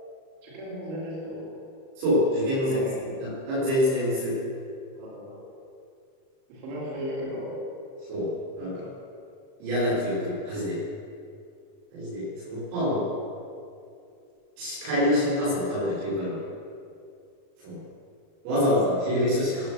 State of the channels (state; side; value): late; left; 38 ms